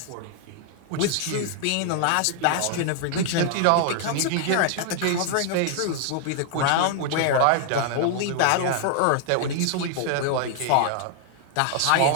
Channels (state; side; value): different; both; correlation 0.00